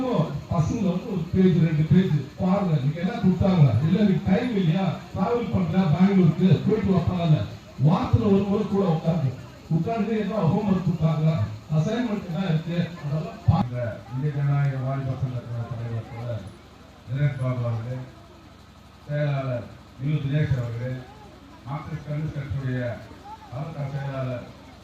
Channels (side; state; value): both; identical; correlation 1.00